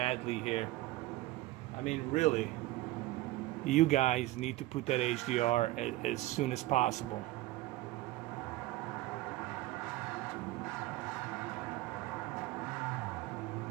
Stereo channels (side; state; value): left; quieter; 17.4 dB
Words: here. I mean, really. You guys need to put that HDR as soon as possible.